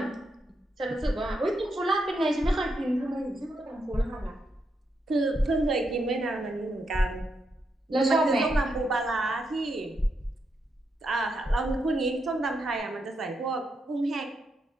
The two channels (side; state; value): both; normal; correlation 0.82